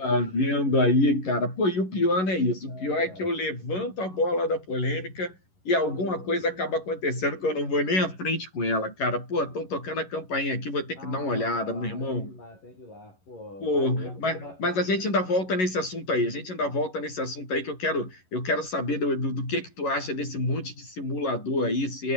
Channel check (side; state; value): right; late; 11 ms